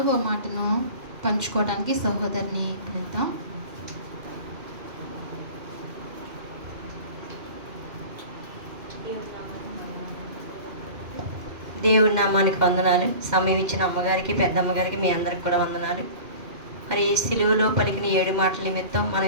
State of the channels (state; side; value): late; left; 2.1 ms